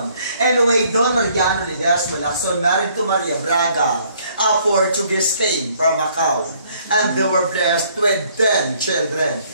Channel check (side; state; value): both; inverted; correlation -0.63